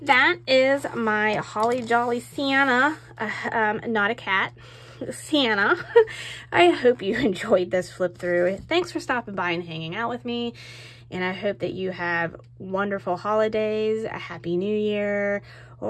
that is my Holly Jolly Santa, not a cat, Santa. I hope you enjoyed this flip through. Thanks for stopping by and hanging out with me. And I hope that you have wonderful holidays, a happy new year,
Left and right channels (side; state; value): both; identical; correlation 1.00